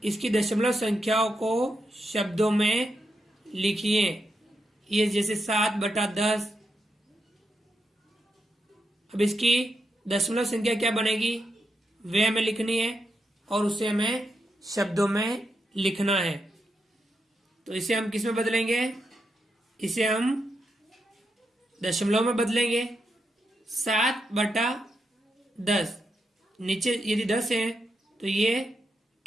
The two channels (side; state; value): both; normal; correlation 0.84